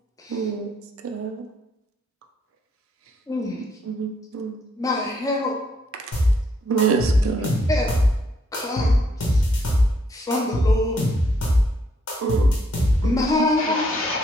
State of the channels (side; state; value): both; normal; correlation 0.72